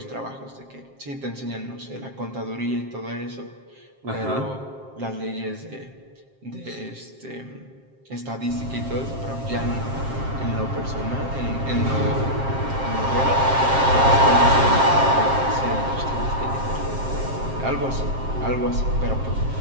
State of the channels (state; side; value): late; left; 7.5 ms